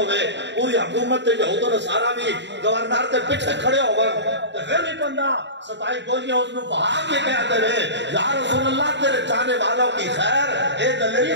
پوری حکومت تے یہود و نصارا بھی گورنر تے پیچھے کھڑے ہوئے تے پھر بھی بندہ ستائی گولیاں اس نے بہا کے کہتے رہے یا رسول اللہ تیرے چاہنے والوں کی خیر اے دلیری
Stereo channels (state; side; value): late; left; 0.52 ms